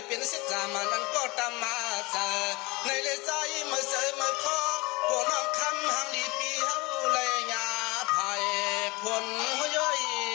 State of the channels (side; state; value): right; quieter; 24.5 dB